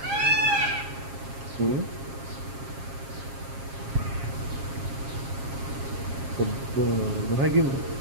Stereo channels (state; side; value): late; left; 7.4 ms